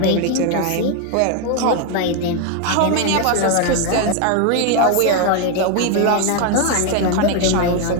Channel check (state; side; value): different; both; correlation 0.01